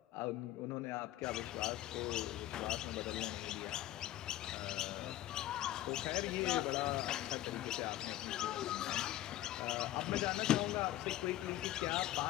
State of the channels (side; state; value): right; quieter; 14.2 dB